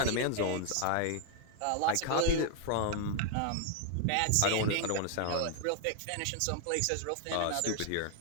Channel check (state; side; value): different; both; correlation 0.00